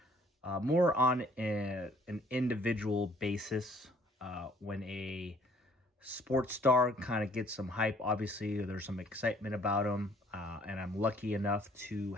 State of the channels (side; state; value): both; normal; correlation 0.59